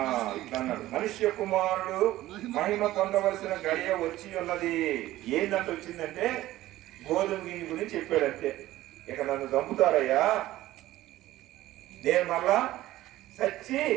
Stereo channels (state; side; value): quieter; left; 15.7 dB